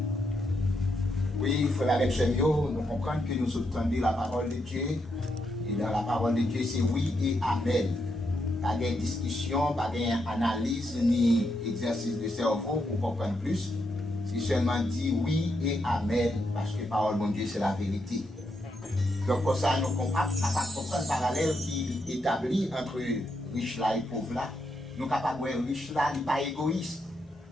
Oui, frère avec Chemio, nous comprenons que nous entendons la parole de Dieu. Et dans la parole de Dieu, c'est oui et amen. Pas de discussion, pas d'analyse ni exercice de cerveau pour comprendre plus. C'est seulement dit oui et amen parce que la parole de Dieu, c'est la vérité. Donc, pour ça, nous sommes capables de comprendre le parallèle qui est établi entre riche là et pauvre là. Nous sommes capables de voir riche là, il n'est pas égoïste.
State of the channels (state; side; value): normal; both; correlation 0.81